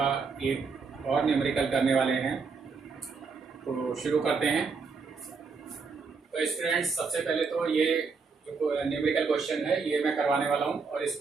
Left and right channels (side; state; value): left; quieter; 4.9 dB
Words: एक और न्यूमेरिकल करने वाले हैं। तो शुरू करते हैं। तो स्टूडेंट्स, सबसे पहले तो ये जो न्यूमेरिकल क्वेश्चन है ये मैं करवाने वाला हूँ और